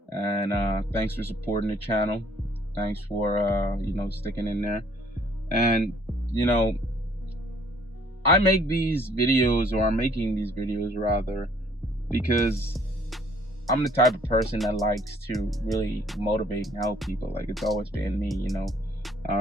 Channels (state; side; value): normal; both; correlation 0.60